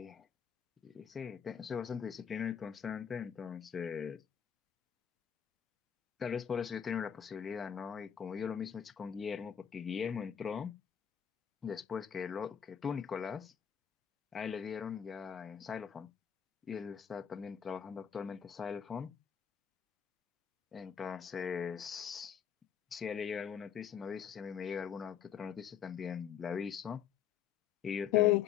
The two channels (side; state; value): right; quieter; 8.4 dB